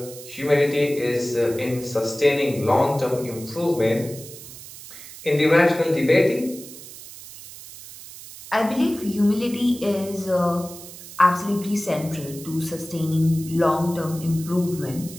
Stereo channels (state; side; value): noise; right; hiss, 15 dB below the sound